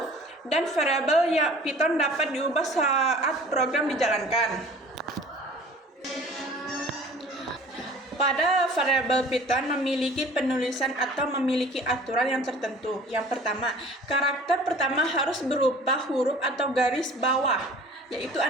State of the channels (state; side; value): normal; both; correlation 0.47